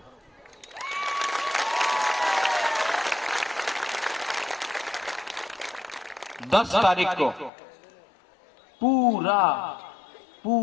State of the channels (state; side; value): drops out; right; at 7.5 s